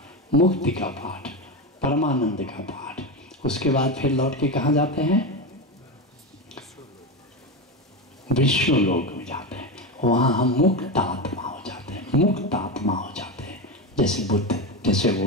मुक्ति का पाठ, परमानंद का पाठ। उसके बाद फिर लौट के कहाँ जाते हैं? विश्व लोक में जाते हैं। वहाँ हम मुक्त आत्मा हो जाते हैं, मुक्त आत्मा हो जाते हैं, जैसे बुद्ध, जैसे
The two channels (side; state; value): both; normal; correlation 0.17